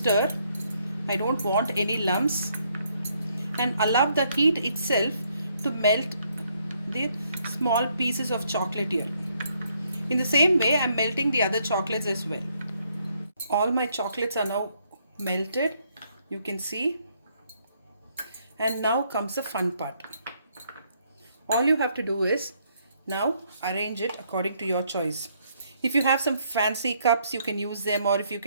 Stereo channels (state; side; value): inverted; both; correlation -0.71